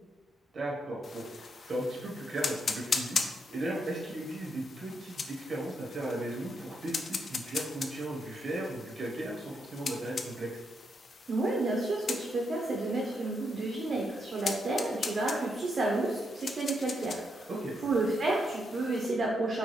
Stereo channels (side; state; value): both; normal; correlation 0.79